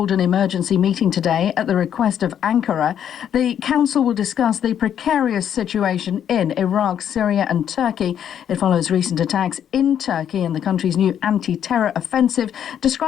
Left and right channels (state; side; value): quieter; right; 9.4 dB